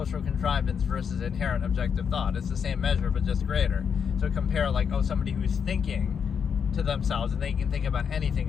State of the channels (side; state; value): right; quieter; 7.0 dB